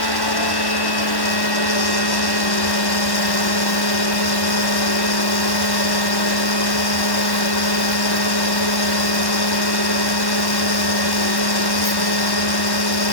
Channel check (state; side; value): late; right; 1.1 ms